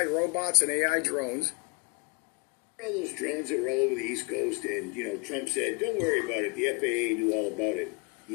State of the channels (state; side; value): quieter; right; 32.0 dB